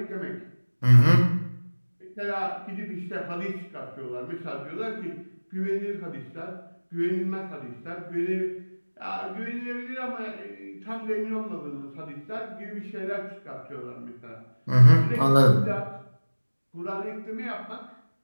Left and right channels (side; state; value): both; inverted; correlation -1.00